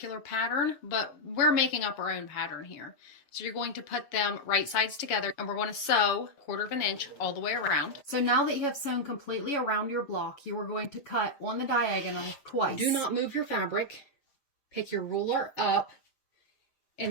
pattern, but we're making up our own pattern here. So you're going to put them right sides together, and we're going to sew 1/4 inch all the way around. So now that you have sewn completely around your block, you are going to cut on the diagonal twice. Do not move your fabric. Pick your ruler up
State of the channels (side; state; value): right; late; 7.0 ms